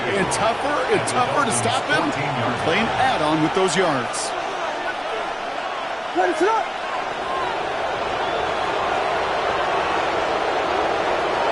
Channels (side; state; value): both; identical; correlation 1.00